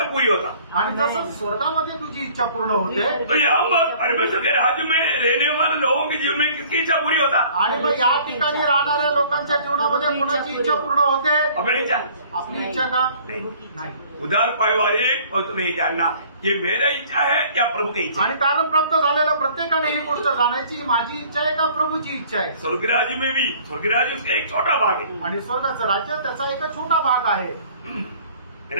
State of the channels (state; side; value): inverted; both; correlation -0.53